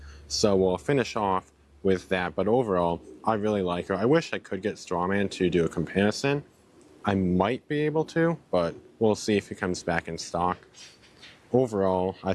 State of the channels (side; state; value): both; identical; correlation 1.00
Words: So we'll finish off with that, but overall, I really like her. I wish I could get Strawman to do a comparison. I might be able to, but we'll see if he comes back in stock. Overall, I